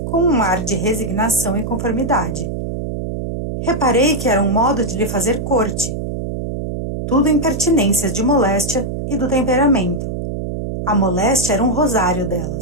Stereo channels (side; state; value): right; noise; hum, 5 dB below the sound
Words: com um ar de resignação e conformidade. Reparei que era um modo de lhe fazer corte. Tudo impertinências de moléstia e do temperamento. A moléstia era um rosário